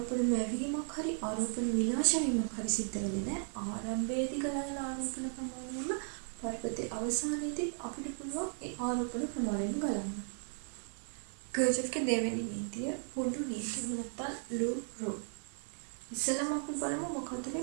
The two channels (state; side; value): silent; left; 54 dB below the other